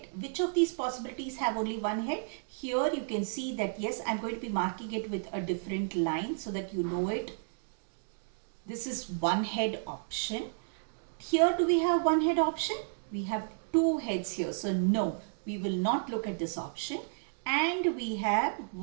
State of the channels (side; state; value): left; silent; digital silence